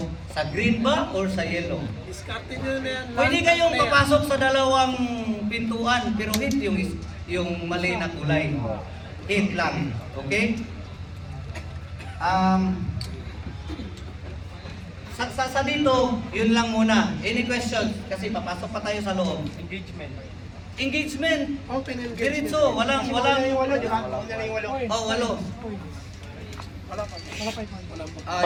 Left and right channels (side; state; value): both; identical; correlation 1.00